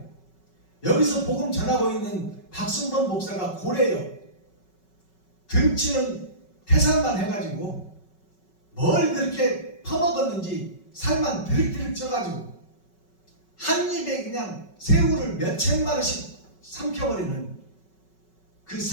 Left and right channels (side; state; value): right; late; 5.3 ms